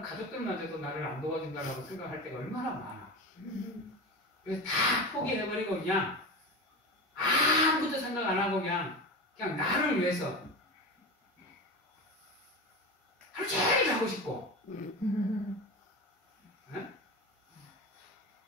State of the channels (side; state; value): both; normal; correlation 0.26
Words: 가족들마저도 나를 안 도와준다고 생각할 때가 얼마나 많아. 그래서 다 포기해버리고 그냥 아무것도 생각 안 하고 그냥 나를 위해서 하루 종일 자고 싶고 네?